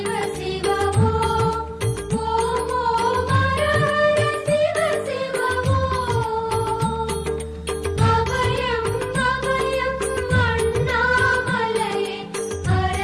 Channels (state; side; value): identical; both; correlation 1.00